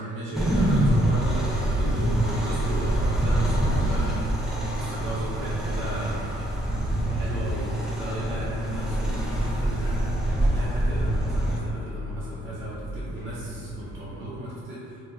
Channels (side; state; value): both; normal; correlation 0.75